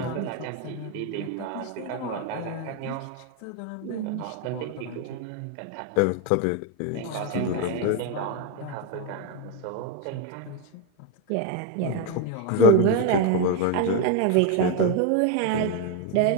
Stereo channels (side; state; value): both; different; correlation 0.02